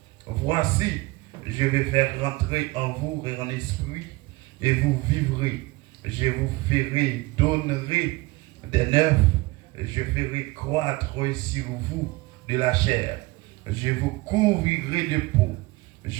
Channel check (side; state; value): left; quieter; 22.2 dB